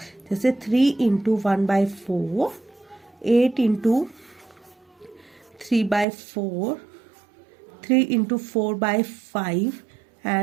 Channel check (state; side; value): drops out; left; at 6.1 s